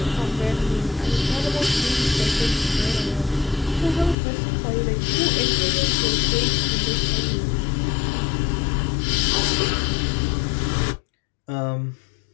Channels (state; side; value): drops out; right; at 4.2 s